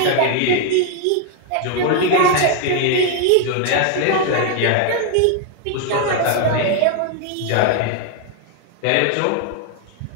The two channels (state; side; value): different; both; correlation 0.01